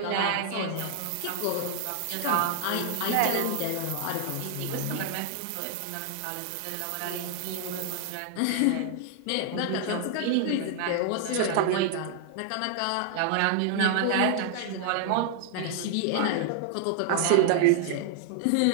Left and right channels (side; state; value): both; different; correlation 0.00